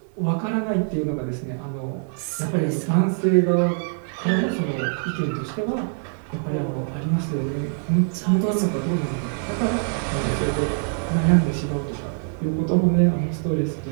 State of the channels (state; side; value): silent; left; 57 dB below the other